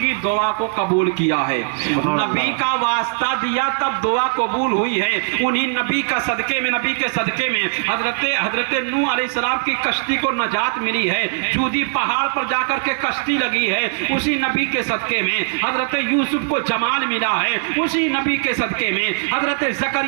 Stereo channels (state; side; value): silent; left; digital silence